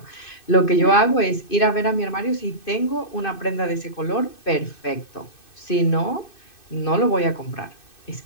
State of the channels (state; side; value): late; right; 2.6 ms